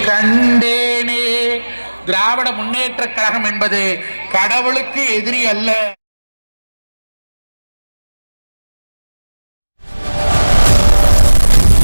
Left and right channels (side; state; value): both; inverted; correlation -1.00